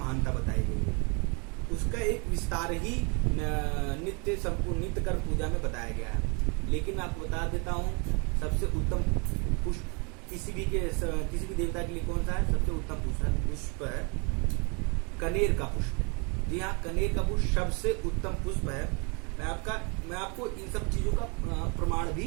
बताई गई है। उसका एक विस्तार ही नित्य कर्म पूजा में बताया गया है। लेकिन मैं आपको बता देता हूँ, सबसे उत्तम पुष्प किसी भी देवता के लिए कौन सा है? सबसे उत्तम पुष्प है कनेर का पुष्प। जी हाँ, कनेर का पुष्प सबसे उत्तम पुष्प है। मैं आपको इन सब चीजों का प्रमाण भी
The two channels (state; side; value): quieter; left; 33.6 dB